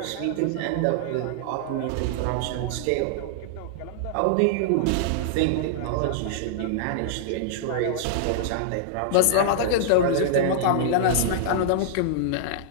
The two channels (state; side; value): different; both; correlation -0.01